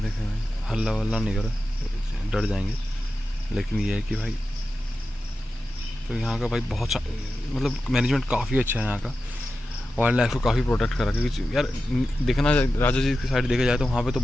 रहे हैं। हल्ला वल्ला नहीं कर, डर जाएंगे। लेकिन ये है कि भाई तो यहाँ का भाई बहुत मतलब मैनेजमेंट काफ़ी अच्छा है यहाँ का। वाइल्ड लाइफ को काफ़ी प्रोटेक्ट करा, क्योंकि यार देखना राजा जी की साइड देखा जाए तो वहाँ पे तो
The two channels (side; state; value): both; normal; correlation 0.92